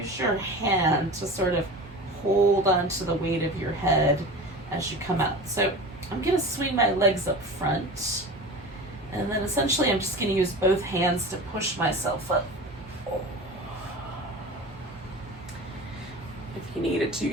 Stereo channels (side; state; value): both; normal; correlation 0.33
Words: your hand to sort of hold onto the weight of your head as you come out. So I'm going to swing my legs up front, and then essentially I'm just going to use both hands to push myself up. You needed to,